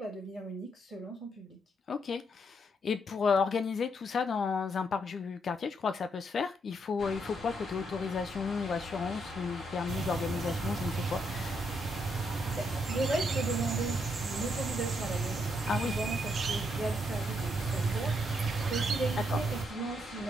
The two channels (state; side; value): normal; both; correlation 0.76